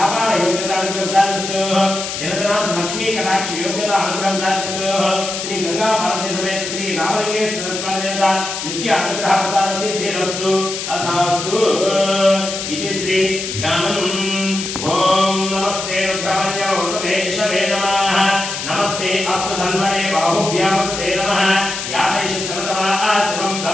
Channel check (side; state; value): left; noise; hiss, 5 dB below the sound